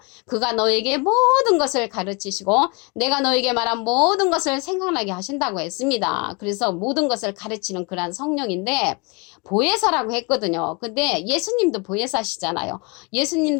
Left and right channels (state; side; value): quieter; right; 30.1 dB